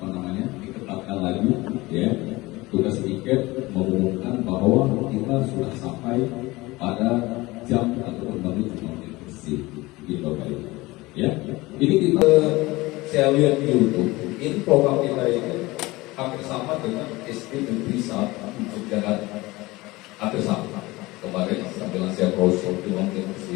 diketatkan lagi, tugas tiket mengumumkan bahwa kita sudah sampai pada jam ataupun menit bersih. Ini kita saya lihat di YouTube. Ini program kita ini hampir sama dengan SD Negeri 1 Jakarta. Hampir sama. Kemarin sambil saya browsing di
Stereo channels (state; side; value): quieter; right; 20.9 dB